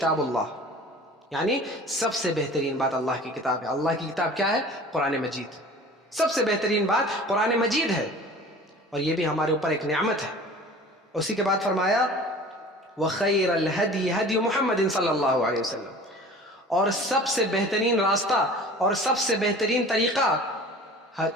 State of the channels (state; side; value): normal; both; correlation 0.43